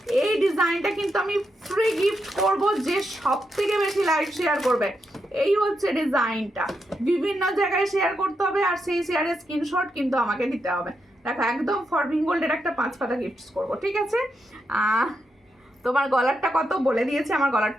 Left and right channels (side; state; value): both; normal; correlation 0.83